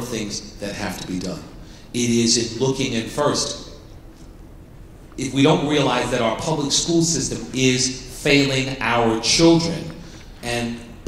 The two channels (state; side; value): identical; both; correlation 1.00